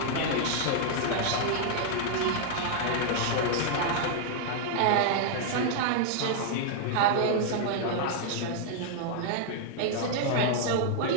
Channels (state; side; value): different; both; correlation -0.01